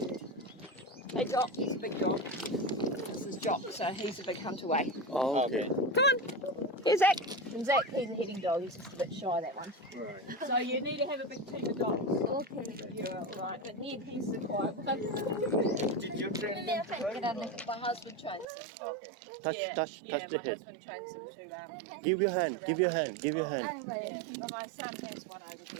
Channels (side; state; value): left; drops out; at 18.4 s